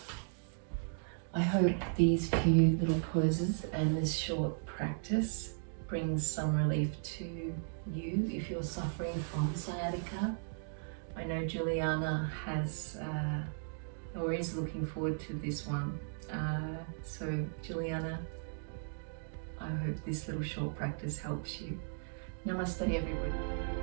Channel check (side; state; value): left; silent; digital silence